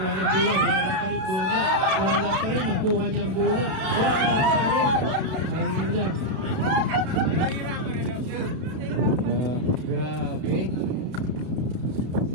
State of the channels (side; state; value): left; late; 32 ms